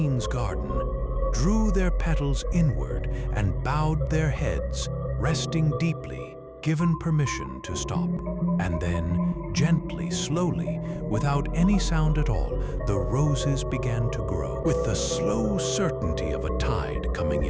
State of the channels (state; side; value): identical; both; correlation 1.00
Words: garden, drew their petals inward and bowed their heads, resting deeply, given permission to stop. And then, gently, slowly, without any sound at all, the roses began to grow, with the slow certainty of a tide coming